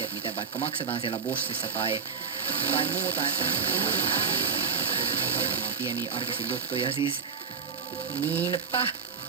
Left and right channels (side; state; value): left; quieter; 6.4 dB